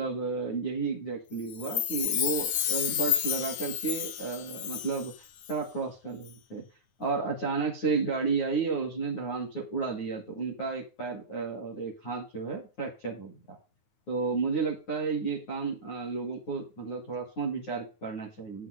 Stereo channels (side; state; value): right; late; 9.6 ms